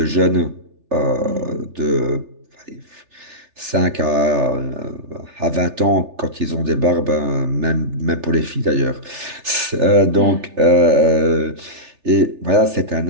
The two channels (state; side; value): late; left; 3.4 ms